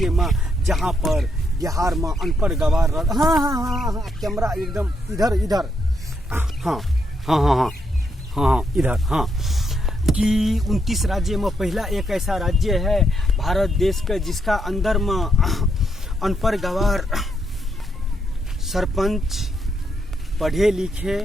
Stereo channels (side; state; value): both; normal; correlation 0.78